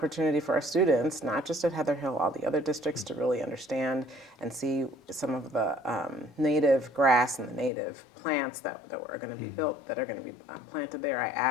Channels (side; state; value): right; drops out; at 7.7 s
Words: for our students, not just at Heather Hill, all the other districts, to really understand and see some of the native grass and the native plants that are going to be built, that are going to be planted there. I